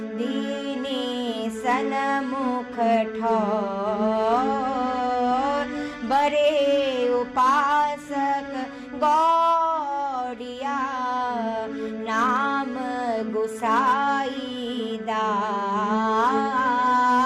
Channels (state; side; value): identical; both; correlation 1.00